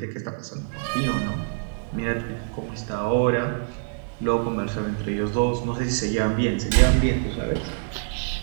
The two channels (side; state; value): left; silent; digital silence